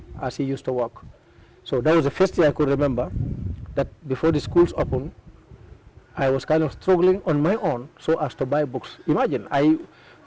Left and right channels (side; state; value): both; identical; correlation 1.00